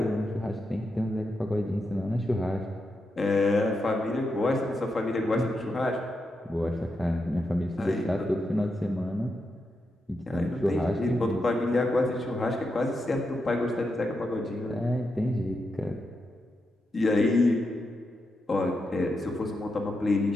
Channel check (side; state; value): both; normal; correlation 0.85